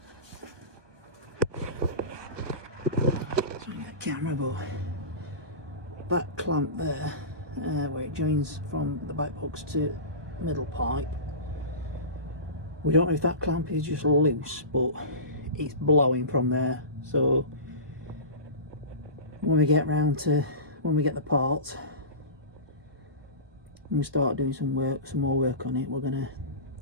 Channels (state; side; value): late; left; 1.2 ms